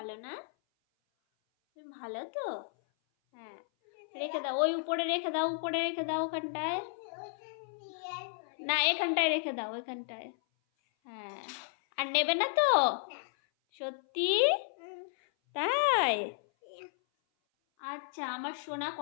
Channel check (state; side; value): silent; right; 56 dB below the other